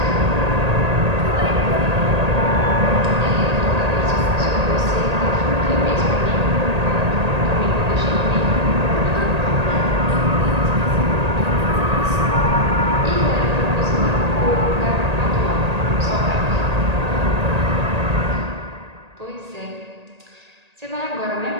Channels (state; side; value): late; left; 1.8 ms